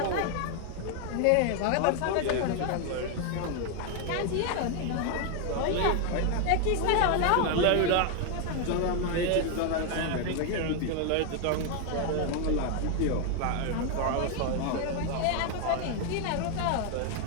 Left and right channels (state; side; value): different; both; correlation 0.01